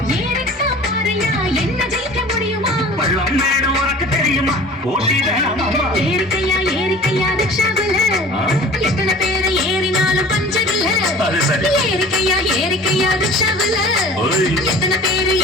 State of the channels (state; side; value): normal; both; correlation 0.44